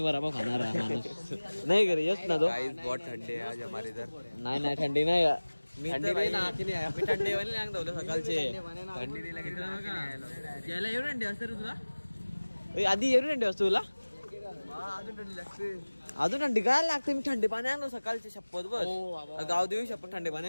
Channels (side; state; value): both; inverted; correlation -1.00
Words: वर आपण खाणार आहे माणूस नाही करे यस ना तो बहुत थंडी आहे आज हमारे इधर नाही थंडी नाही थंडी नाही थंडी वाली नाही धवलं सकाळचे थंडी नाही लागली याला एवढी थंडी असते रे तुला आधी एवढी थंडी असते तुला अजून थंडी लागते अजून थंडी काय लागते मी थंडी पाणी आणलो सकाळचे शपथ बस गाव देऊ शपथ थंडी पाणी